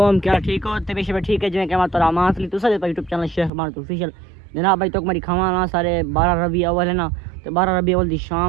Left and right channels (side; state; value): left; drops out; at 3.5 s